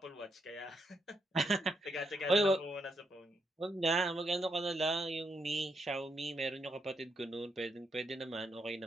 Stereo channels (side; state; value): both; normal; correlation 0.79